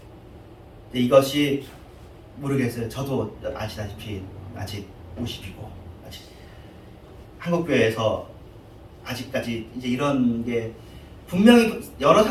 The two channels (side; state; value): both; identical; correlation 1.00